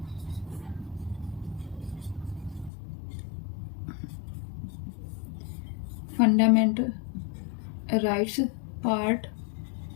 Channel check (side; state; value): right; drops out; at 2.7 s